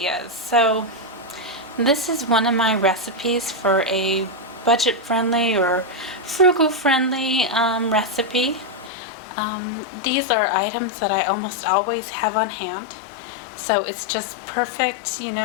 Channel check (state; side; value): drops out; right; at 8.9 s